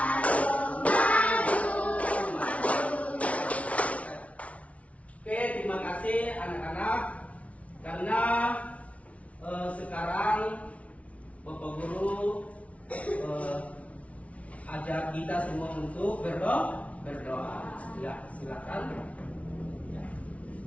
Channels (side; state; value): right; late; 0.065 ms